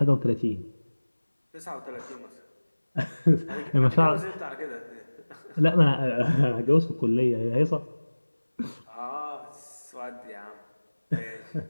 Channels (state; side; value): inverted; both; correlation -1.00